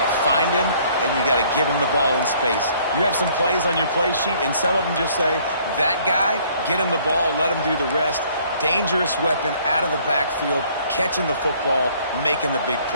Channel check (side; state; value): both; inverted; correlation -0.60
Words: find him, and you got to give him the ball in space. You have some plays on your play sheet, and some of them just say, that guy, get him the ball, let him do the rest. Dangerous weapon out of the backfield, catching the football, making the big